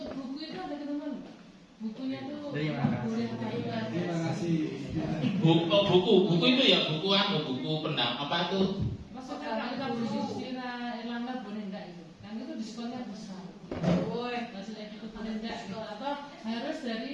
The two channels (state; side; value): identical; both; correlation 1.00